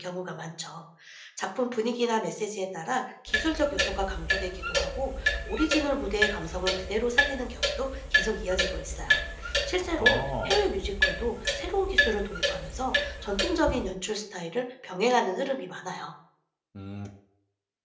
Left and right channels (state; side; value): identical; both; correlation 1.00